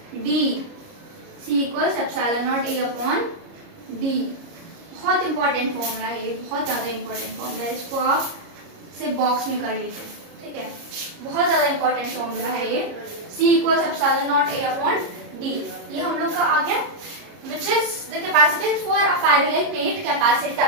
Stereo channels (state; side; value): late; left; 29 ms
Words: D, C equals epsilon not A upon D। बहुत इंपॉर्टेंट फॉर्मूला है ये, बहुत ज़्यादा इंपॉर्टेंट फॉर्मूला है, इसको आप सिर्फ बॉक्स में कर लीजिए, ठीक है। बहुत ज़्यादा इंपॉर्टेंट फॉर्मूला है ये, C equals epsilon not A upon D। ये हम लोग का आ गया, which is the capacitance for a parallel plate capacitor।